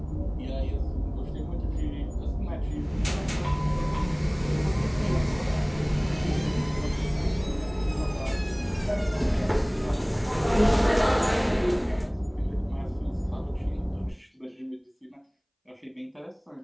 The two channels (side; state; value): both; identical; correlation 1.00